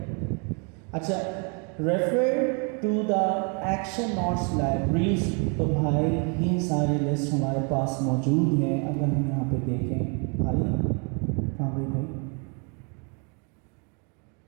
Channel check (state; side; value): quieter; left; 35.8 dB